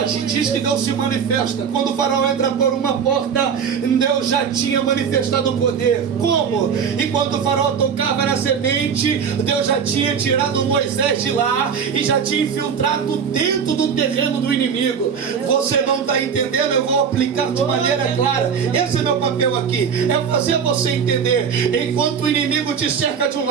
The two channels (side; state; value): left; quieter; 6.9 dB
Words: diz que Deus se manifesta. Quando o faraó entra por uma porta, Deus já tinha manifestado o poder. Como? Enquanto o faraó tocava na semente, Deus já tinha tirado Moisés de lá e já tinha infiltrado dentro do terreno do inimigo. Você não está entendendo? Eu vou aplicar de maneira clara. Esse é meu papel aqui, é fazer você entender. Enquanto o inimigo te cerca de um